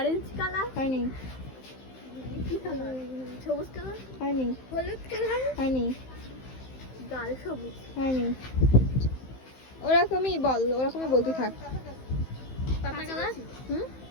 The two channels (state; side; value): late; right; 15 ms